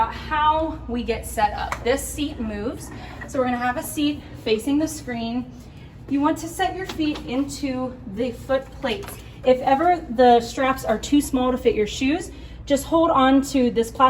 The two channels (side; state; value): both; identical; correlation 1.00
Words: how we get set up. This seat moves. So we're gonna have a seat facing the screen. You want to set your feet into the foot plates. If ever the straps are too small to fit your shoes, just hold on to this